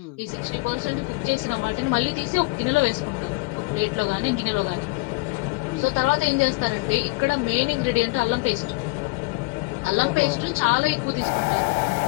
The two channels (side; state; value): right; quieter; 24.1 dB